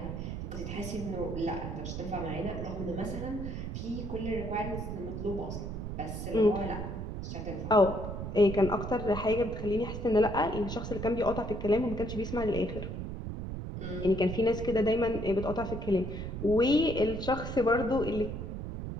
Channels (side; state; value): right; noise; rumble, 6 dB below the sound